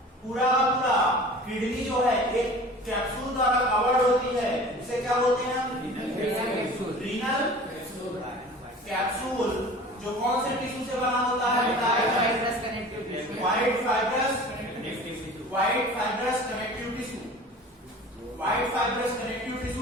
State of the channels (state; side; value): normal; both; correlation 0.41